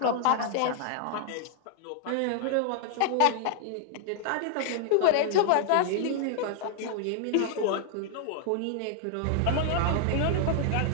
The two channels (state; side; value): different; both; correlation 0.00